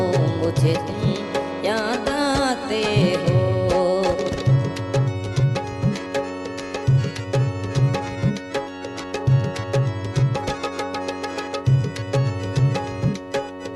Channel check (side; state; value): both; identical; correlation 1.00